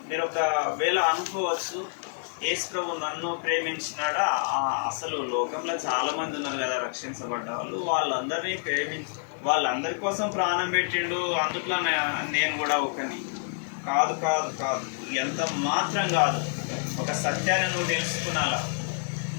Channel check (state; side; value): silent; right; 57 dB below the other